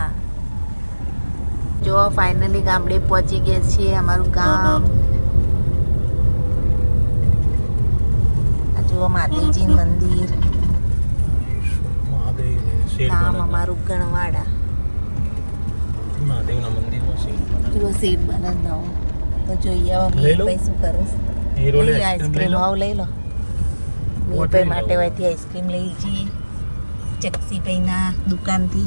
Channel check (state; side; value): inverted; both; correlation -1.00